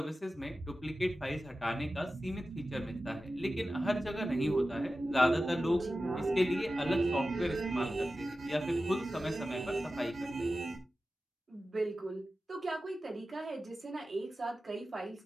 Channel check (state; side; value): normal; both; correlation 0.94